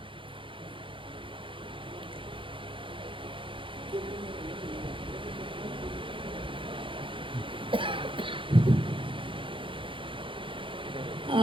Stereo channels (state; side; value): late; left; 0.25 ms